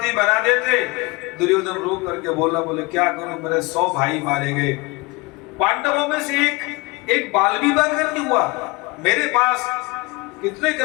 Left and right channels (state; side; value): quieter; right; 24.9 dB